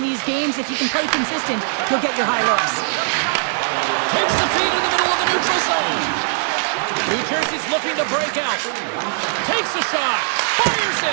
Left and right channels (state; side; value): silent; left; digital silence